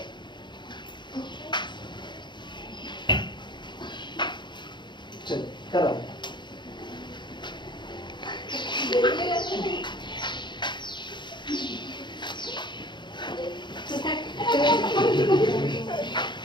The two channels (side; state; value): right; late; 0.22 ms